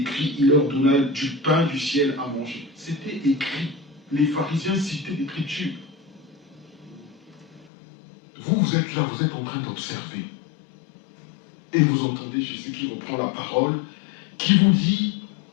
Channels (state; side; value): drops out; right; at 7.7 s